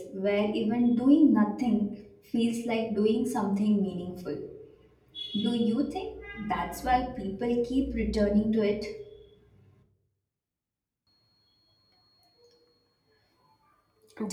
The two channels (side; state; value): both; identical; correlation 1.00